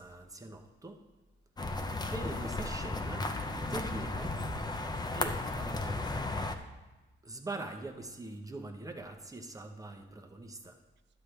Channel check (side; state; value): both; normal; correlation 0.55